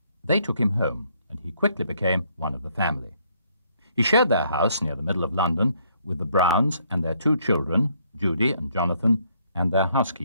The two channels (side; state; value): both; inverted; correlation -0.69